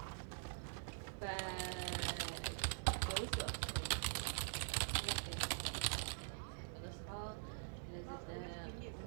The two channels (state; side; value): silent; left; digital silence